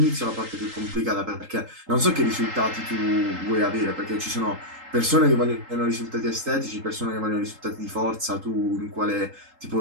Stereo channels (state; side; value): late; left; 3.8 ms